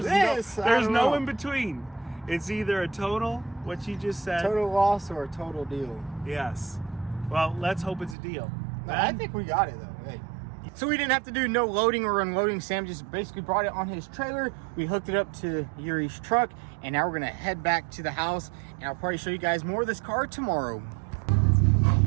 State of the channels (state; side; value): drops out; left; at 8.2 s